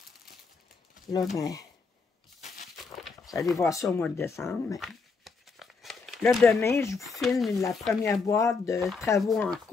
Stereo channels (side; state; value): right; quieter; 4.6 dB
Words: là, ben, vous allez voir ça au mois de décembre. Mais... Là, demain, je vous filme la première boîte de travaux en